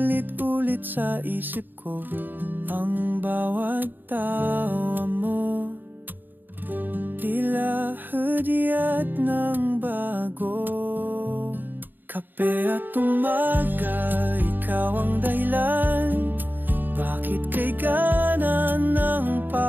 sa isip ko. Ang bawat tawa mo tila hudyat ng bago. Kape at umaga, ikaw ang dahilan. Bakit kay gana ng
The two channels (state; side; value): late; left; 0.091 ms